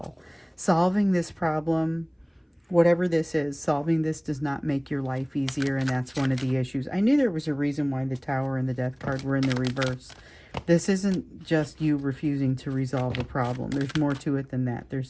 Solving this problem, whatever this is, solving this does not make your life easier, and that's one of the issues. I knew there was a reason why the Tower and the Death card were in the reverse. This isn't just you refusing to resolve a problem. There's more to it than that. There's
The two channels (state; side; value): identical; both; correlation 1.00